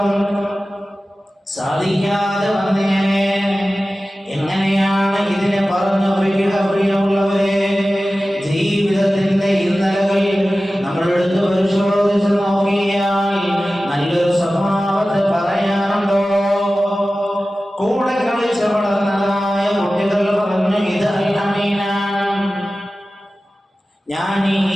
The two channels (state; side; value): normal; both; correlation 0.96